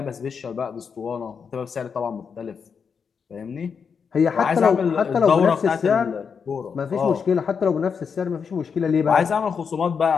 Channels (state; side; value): quieter; right; 6.3 dB